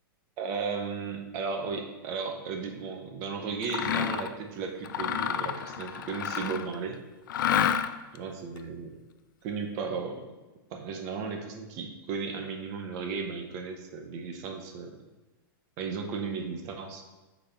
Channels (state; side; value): normal; both; correlation 0.04